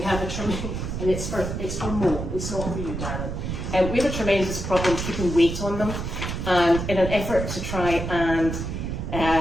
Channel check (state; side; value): noise; right; rumble, 4 dB below the sound